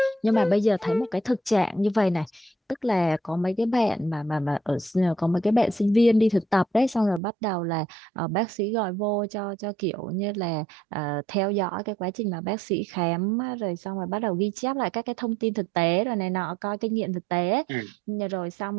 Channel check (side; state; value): left; drops out; at 7.2 s